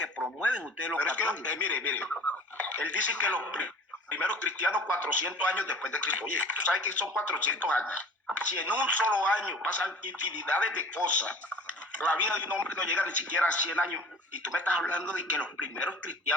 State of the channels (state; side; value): normal; both; correlation 0.43